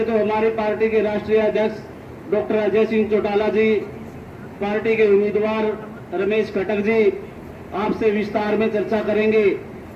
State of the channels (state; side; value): identical; both; correlation 1.00